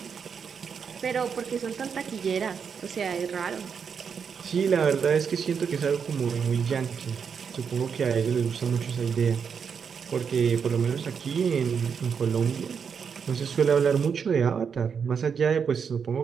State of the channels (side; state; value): left; quieter; 6.6 dB